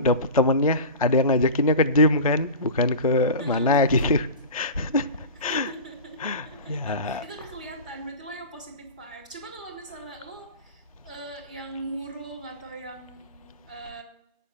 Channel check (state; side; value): inverted; both; correlation -0.30